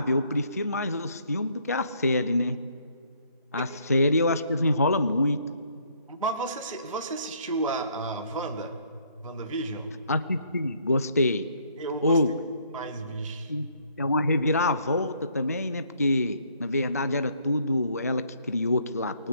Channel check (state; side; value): inverted; both; correlation -0.65